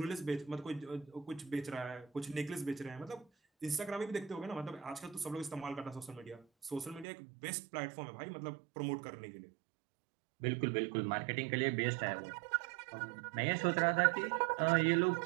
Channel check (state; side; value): drops out; left; at 7.1 s